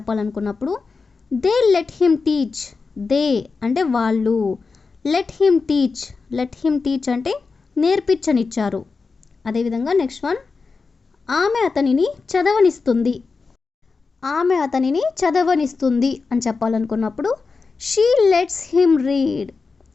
they let him teach. They అంటే వాళ్ళు, లెట్ హిమ్ టీచ్ అంటే నేర్పించనిచ్చారు. అదేవిధంగా నెక్స్ట్ వన్, ఆమె అతనిని చదవనిస్తుంది. ఆమె అతనిని చదవనిస్తుంది అని చెప్పాలనుకున్నప్పుడు she lets him read.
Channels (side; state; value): right; quieter; 4.5 dB